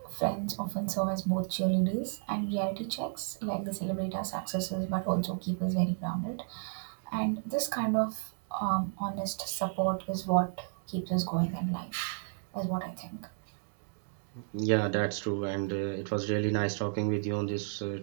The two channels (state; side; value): silent; left; digital silence